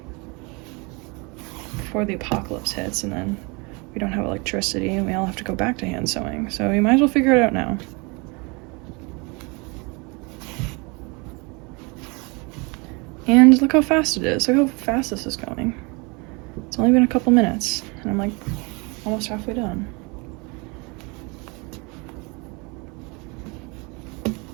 before the apocalypse hits, and then we don't have electricity and we all have to go back to hand sewing. So you might as well figure it out now. And look how fast it is. Look how fast this is going. It's only been a couple minutes, and I'm like almost halfway done.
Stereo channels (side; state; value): left; quieter; 29.0 dB